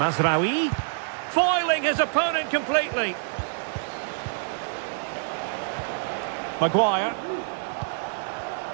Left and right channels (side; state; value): left; silent; digital silence